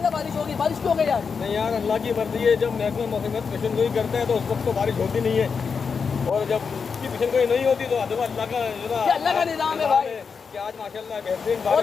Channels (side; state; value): right; quieter; 5.7 dB